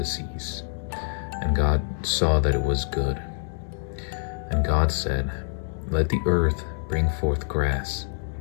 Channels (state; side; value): silent; right; digital silence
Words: seas. And God saw that it was good. And God said, "Let the earth bring forth grass,